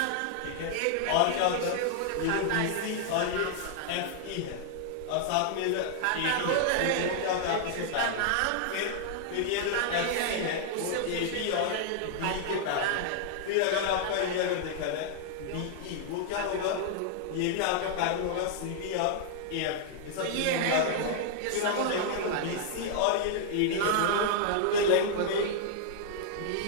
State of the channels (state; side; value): different; both; correlation -0.01